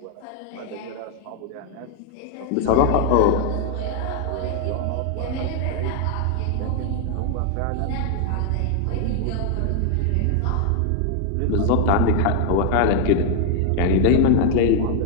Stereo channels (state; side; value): different; both; correlation 0.00